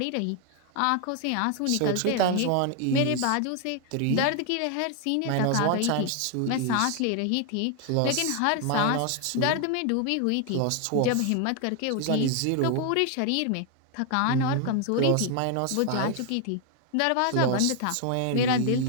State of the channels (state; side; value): different; both; correlation 0.01